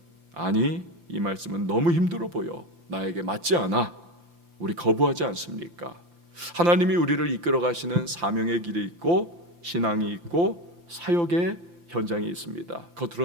아니, 이 말씀은 너무 힘들어 보여. 나에게 맞지 않아. 우리 거부하지 않습니까? 하나님이 우리를 이끌어 가시는 사명의 길이 있고 신앙이 있고 사역의 현장이 있습니다.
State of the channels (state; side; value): late; left; 5.8 ms